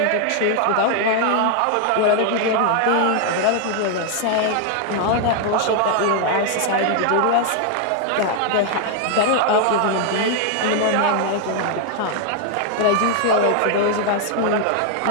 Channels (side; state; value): both; different; correlation 0.00